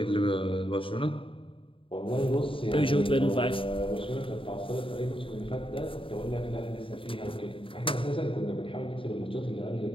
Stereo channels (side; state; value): right; late; 0.25 ms